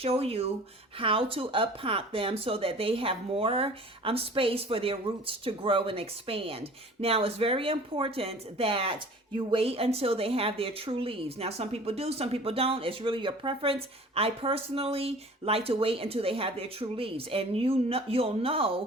you how to up pot them so that they have more space for their roots to grow and expand. Now, it's very important that you wait until they have their true leaves. Now, some people do, some people don't. It's really your preference. I personally like to wait until they have their true leaves. And you'll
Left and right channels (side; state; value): both; normal; correlation 0.45